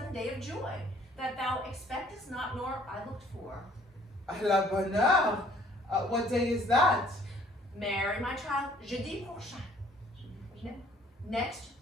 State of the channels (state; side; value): normal; both; correlation 0.59